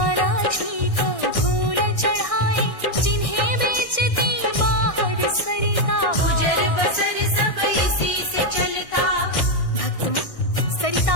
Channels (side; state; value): right; late; 1.6 ms